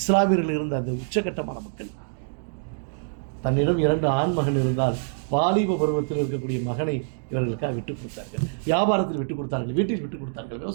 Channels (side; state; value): left; silent; digital silence